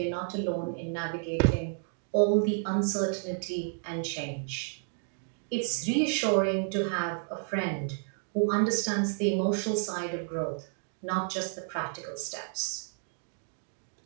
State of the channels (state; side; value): silent; left; 57 dB below the other